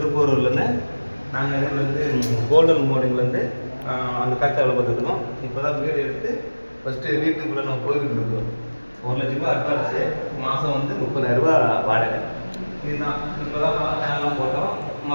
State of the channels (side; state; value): both; inverted; correlation -1.00